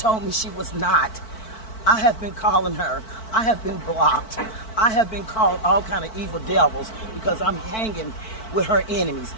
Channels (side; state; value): right; late; 4.5 ms